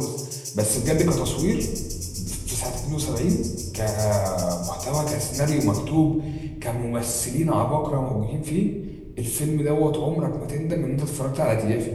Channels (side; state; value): both; identical; correlation 1.00